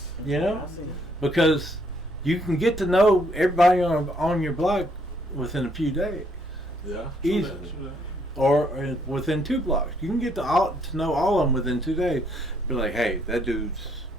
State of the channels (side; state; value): both; normal; correlation 0.69